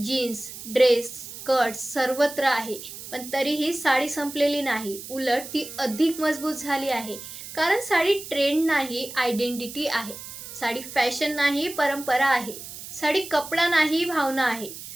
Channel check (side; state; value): right; noise; hiss, 12 dB below the sound